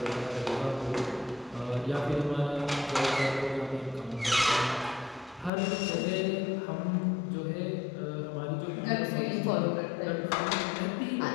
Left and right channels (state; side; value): drops out; right; at 5.5 s